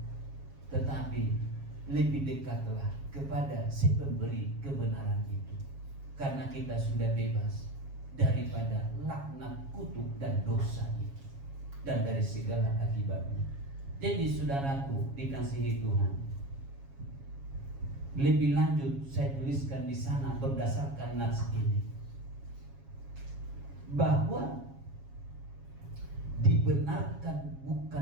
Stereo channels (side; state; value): left; late; 7.3 ms